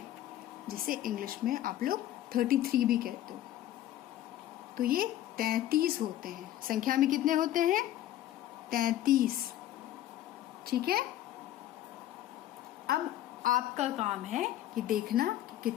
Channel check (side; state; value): right; quieter; 13.2 dB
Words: जिसे इंग्लिश में आप लोग 33 भी कहते हो। तो ये 33 होते हैं। संख्या में कितने होते हैं? 33। ठीक है, अब आपका काम है कि देखना कि